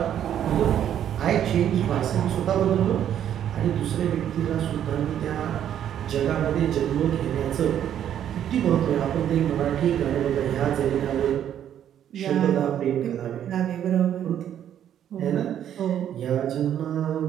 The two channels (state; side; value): quieter; left; 10.1 dB